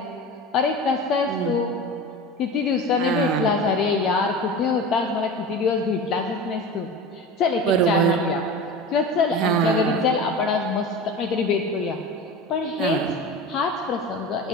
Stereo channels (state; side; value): normal; both; correlation 0.32